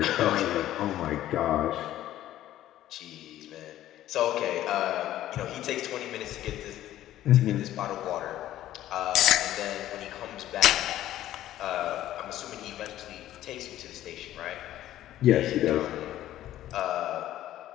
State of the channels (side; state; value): right; quieter; 13.3 dB